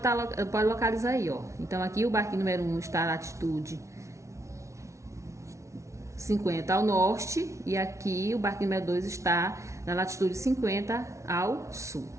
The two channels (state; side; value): late; left; 0.14 ms